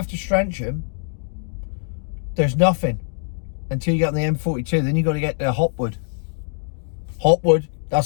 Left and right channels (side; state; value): right; silent; digital silence